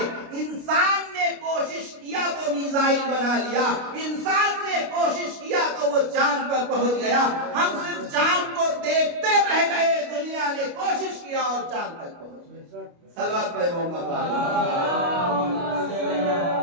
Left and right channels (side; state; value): left; late; 29 ms